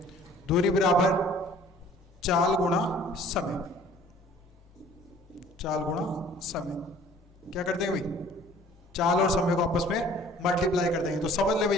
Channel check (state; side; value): normal; both; correlation 0.52